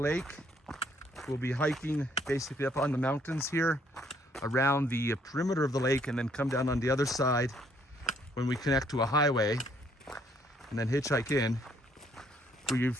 We'll be hiking basically up on the mountains here around the perimeter of the lake, and then come down on the other side when we connect to a highway, and then hitchhike in. We've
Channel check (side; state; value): both; normal; correlation 0.66